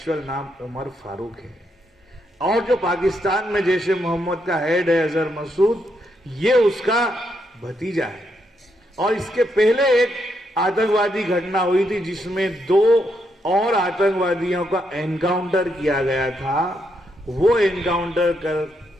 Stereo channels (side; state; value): both; normal; correlation 0.79